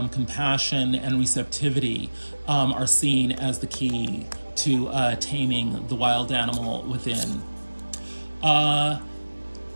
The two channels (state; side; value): inverted; both; correlation -1.00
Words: compassion, and receptivity are seen as the key to taming the wild animal within.